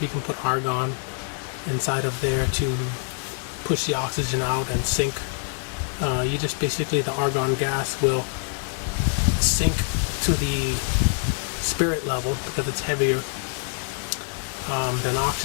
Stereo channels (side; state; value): right; silent; 62 dB below the other